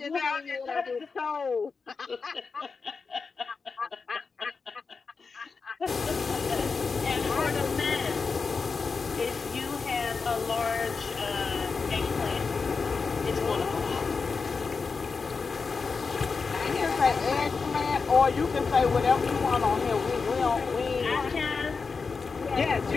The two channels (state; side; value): quieter; right; 4.8 dB